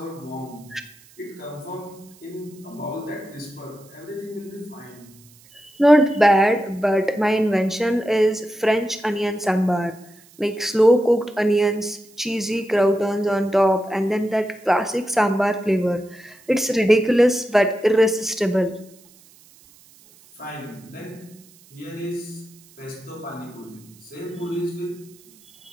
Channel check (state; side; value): noise; right; hiss, 26 dB below the sound